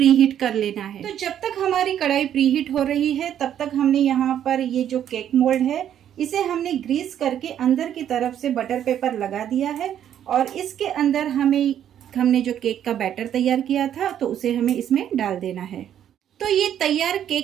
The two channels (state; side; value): quieter; left; 10.1 dB